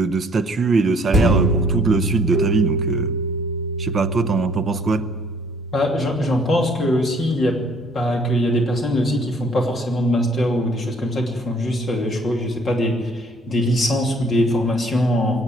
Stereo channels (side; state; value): both; normal; correlation 0.60